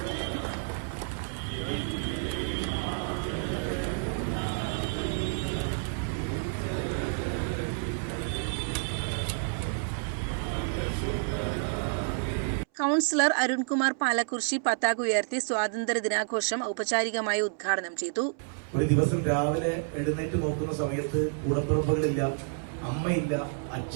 കൗൺസിലർ അരുൺകുമാർ പാലക്കുറിശി പതാക ഉയർത്തി സ്വാതന്ത്ര്യ ദിനാഘോഷം ഔപചാരികമായി ഉദ്ഘാടനം ചെയ്തു. ഒരു ദിവസം രാവിലെ എഴുന്നേറ്റ് നോക്കുന്ന സമയത്ത് കൂടപ്പിറപ്പുകളില്ല, അമ്മയില്ല,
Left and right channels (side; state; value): left; silent; 58 dB below the other